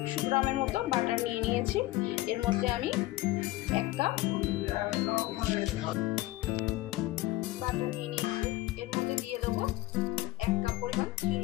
গ্রামের মতো বাটার নিয়ে নিয়েছি। এর মধ্যে আমি 1 কাপ বাটার নিয়ে নিয়েছি। এর মধ্যে দিয়ে দেবো 1 কাপ পরিমাণ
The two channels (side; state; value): right; quieter; 18.0 dB